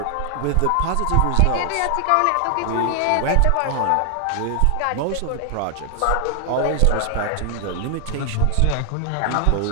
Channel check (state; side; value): different; both; correlation 0.00